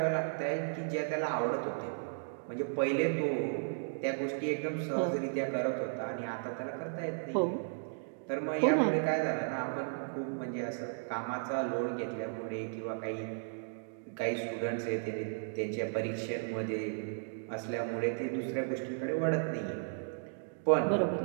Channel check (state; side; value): silent; left; digital silence